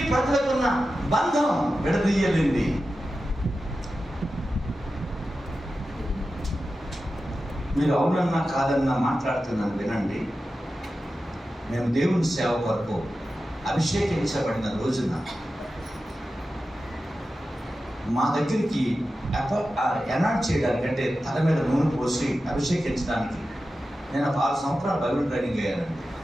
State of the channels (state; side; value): normal; both; correlation 0.93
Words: ప్రజలకున్న బంధం విడదీయలేంది. మీరు అవునన్నా కాదన్నా మాట్లాడుతున్నాను వినండి. మేము దేవుని సేవ కొరకు అభిషేకించబడిన రోజున మా దగ్గరికి ఎనాట్ చేయడానికి అంటే తల మీద నూనె పోసి అభిషేకించడానికి నేను 6 సంవత్సరాలు బైబిల్ ట్రైనింగ్ అయ్యానండి.